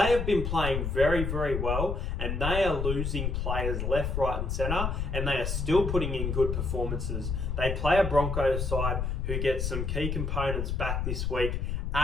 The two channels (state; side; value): noise; left; rumble, 1 dB below the sound